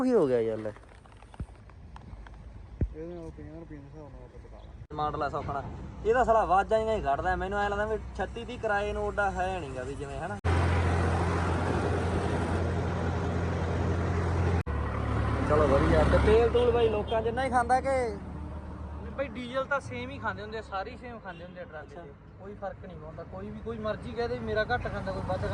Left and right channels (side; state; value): both; identical; correlation 1.00